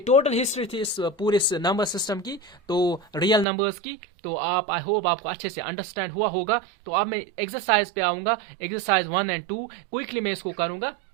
टोटल हिस्ट्री थी इस पूरे नंबर सिस्टम की, तो रियल नंबर्स की। तो आई होप आपको अच्छे से अंडरस्टैंड हुआ होगा। तो अब मैं एक्सरसाइज पे आऊंगा, एक्सरसाइज 1 और 2 क्विकली मैं इसको करूंगा।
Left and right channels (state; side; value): drops out; left; at 3.5 s